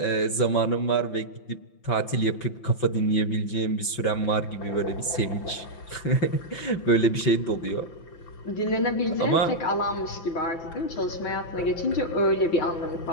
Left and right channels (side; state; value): right; late; 5.3 ms